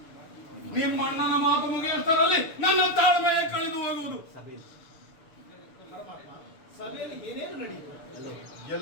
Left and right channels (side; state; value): right; late; 6.9 ms